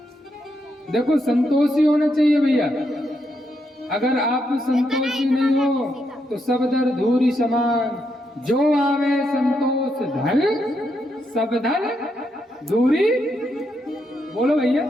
देखो संतोषी होना चाहिए भैया, अगर आप संतोषी नहीं हो तो सब दर धूरी समान। जो आवे संतोष धन, सब धन धूरी। बोलो भैया,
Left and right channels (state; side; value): normal; both; correlation 0.80